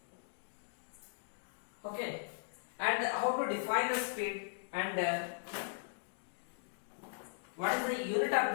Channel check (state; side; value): silent; right; digital silence